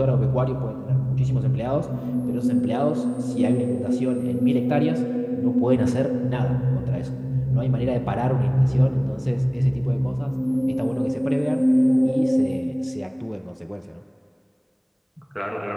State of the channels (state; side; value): identical; both; correlation 1.00